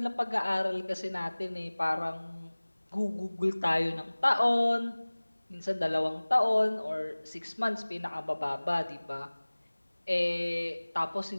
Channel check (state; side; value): inverted; both; correlation -1.00